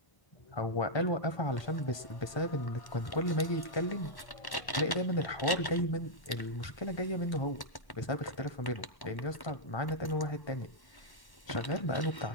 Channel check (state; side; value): late; right; 1.1 ms